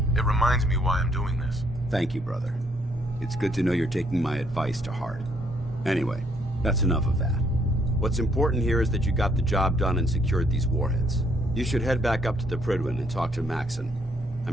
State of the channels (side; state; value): both; normal; correlation 0.69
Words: It reminds me why I'm doing this. Thank you, brother. It's good to know you're taking my advice to heart. Anyway, that's enough of that. What's important here is that you got the job done and secured these warheads. You should head back up to the Prydwen and talk to Maxon.